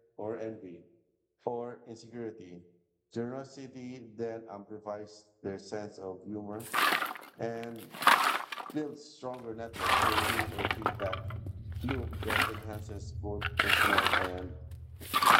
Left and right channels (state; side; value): identical; both; correlation 1.00